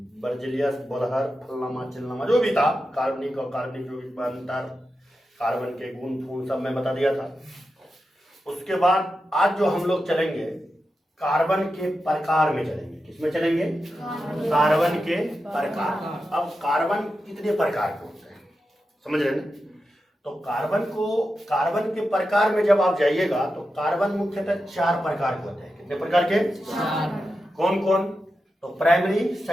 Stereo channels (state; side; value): normal; both; correlation 0.90